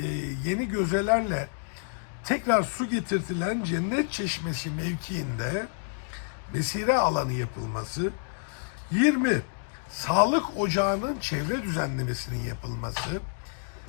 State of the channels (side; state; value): right; silent; digital silence